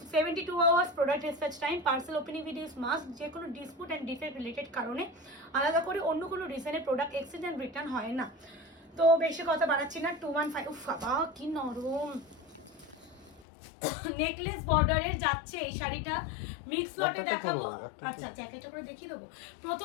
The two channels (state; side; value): drops out; right; at 13.5 s